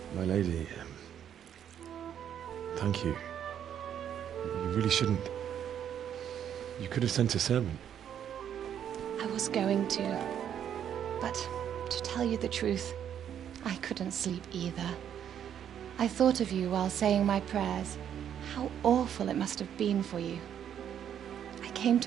My lady, thank you. You really shouldn't. You could have sent a servant. I was going to, but to tell you the truth, I couldn't sleep either. I thought of you while saying my prayers. How awful it must have been for you. I came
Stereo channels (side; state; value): left; quieter; 9.4 dB